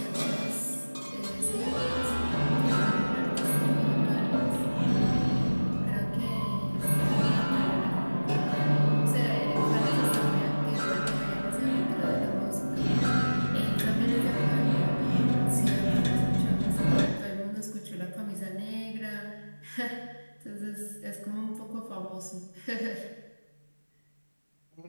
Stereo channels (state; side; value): inverted; both; correlation -1.00